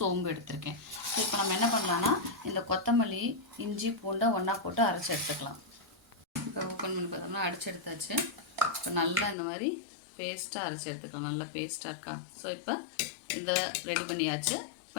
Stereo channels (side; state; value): right; drops out; at 9.3 s